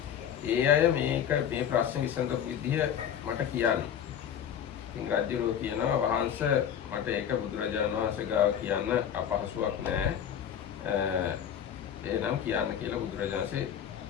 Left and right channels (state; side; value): quieter; right; 9.1 dB